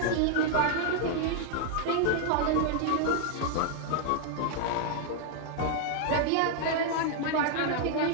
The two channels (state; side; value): different; both; correlation 0.00